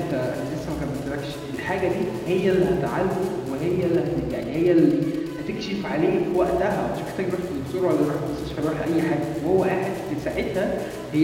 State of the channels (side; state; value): both; identical; correlation 1.00